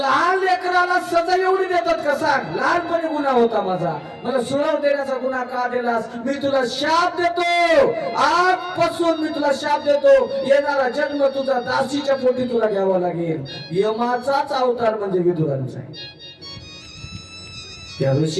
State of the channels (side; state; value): both; identical; correlation 1.00